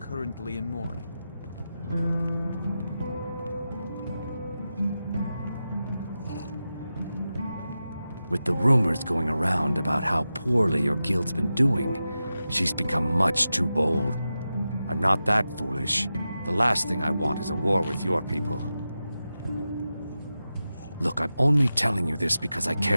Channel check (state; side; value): inverted; both; correlation -0.92